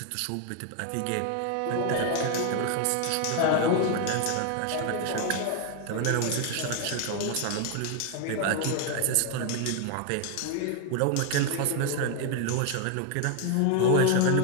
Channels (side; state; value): both; different; correlation 0.00